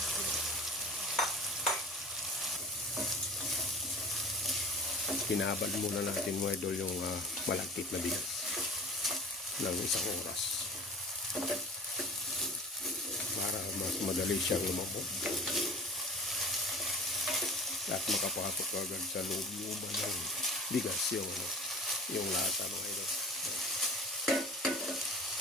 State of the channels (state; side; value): normal; both; correlation 0.39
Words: Pinabal muna natin mga idol yung malagkit na bigas ng 1 oras para mas madali siyang lumambot at makapasok agad sa loob-looban ng bigas yung lasa mga idol.